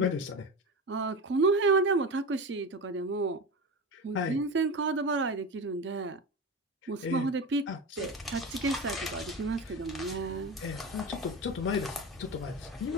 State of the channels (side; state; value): both; normal; correlation 0.25